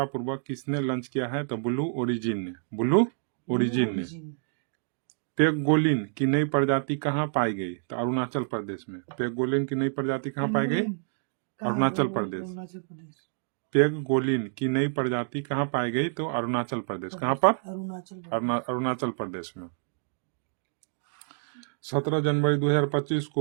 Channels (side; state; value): left; silent; digital silence